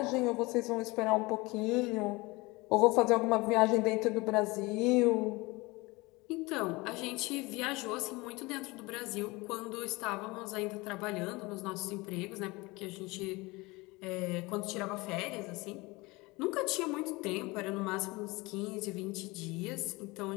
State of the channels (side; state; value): right; quieter; 23.5 dB